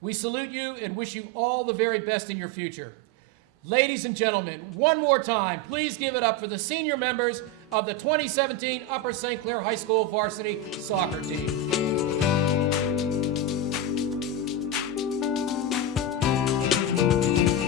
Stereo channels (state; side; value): normal; both; correlation 0.13